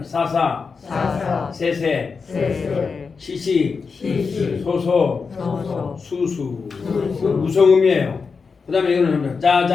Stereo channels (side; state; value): right; quieter; 5.1 dB